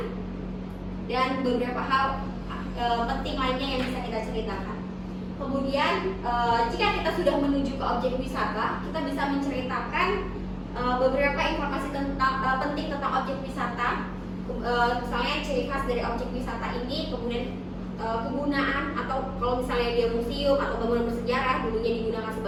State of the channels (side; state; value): both; identical; correlation 1.00